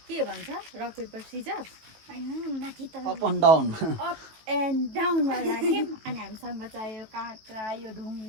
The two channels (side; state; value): left; late; 18 ms